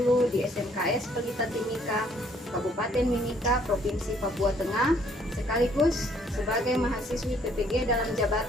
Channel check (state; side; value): normal; both; correlation 0.64